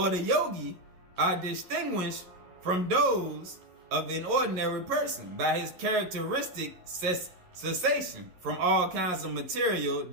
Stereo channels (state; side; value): late; left; 11 ms